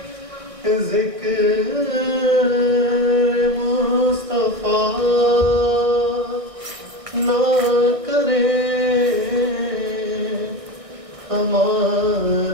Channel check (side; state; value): left; late; 1.6 ms